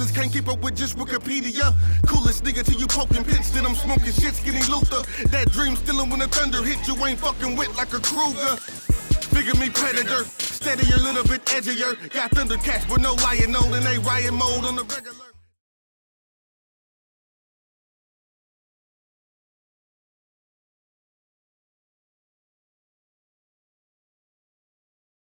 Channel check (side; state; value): both; inverted; correlation -1.00